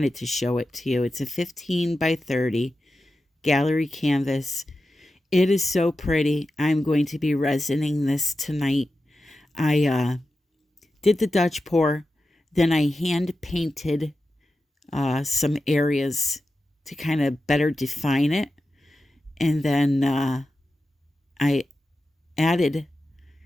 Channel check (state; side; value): normal; both; correlation 0.91